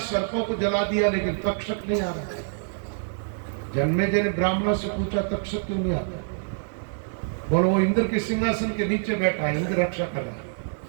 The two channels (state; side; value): silent; left; digital silence